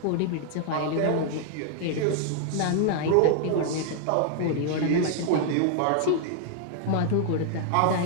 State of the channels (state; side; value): different; both; correlation -0.01